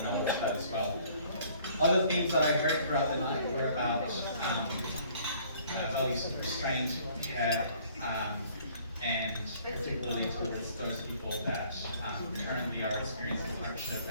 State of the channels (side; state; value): both; inverted; correlation -0.57